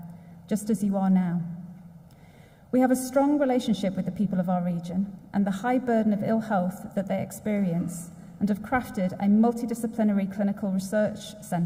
just as you are now. We have a strong relationship with the people of our region and the high burden of ill health that they experience, and have crafted a multidisciplinary clinical research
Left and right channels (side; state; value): both; identical; correlation 1.00